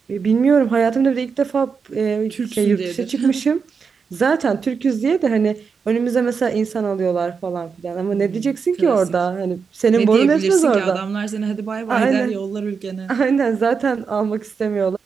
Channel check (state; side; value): quieter; left; 5.6 dB